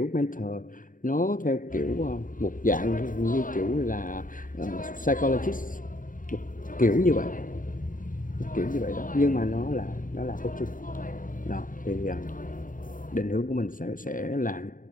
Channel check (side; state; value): right; late; 0.39 ms